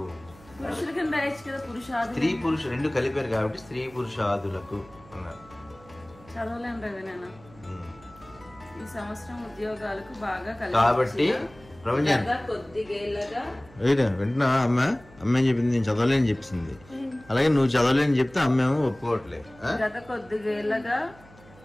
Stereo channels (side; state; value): right; noise; hum, 24 dB below the sound